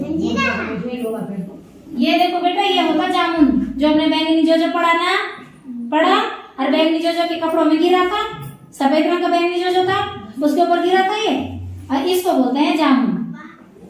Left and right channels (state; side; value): identical; both; correlation 1.00